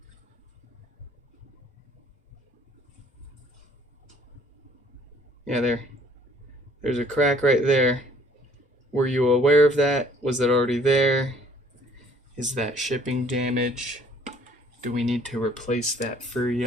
Yeah, there's a crack right there. Were you aware of that? Was it already there? Is that shipping damage? Do we need to replace that for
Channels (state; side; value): normal; both; correlation 0.58